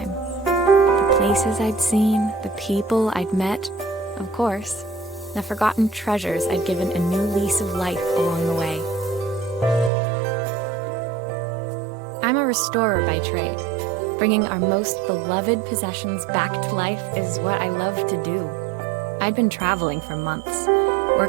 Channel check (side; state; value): left; drops out; at 9.9 s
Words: The places I'd seen, the people I'd met, of course, the forgotten treasures I'd given a new lease of life along the way. I'm a restorer by trade. Bringing our most beloved possessions back to life is what I love to do. I'd been traveling for months,